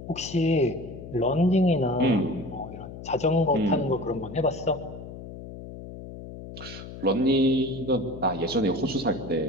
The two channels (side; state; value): left; noise; hum, 12 dB below the sound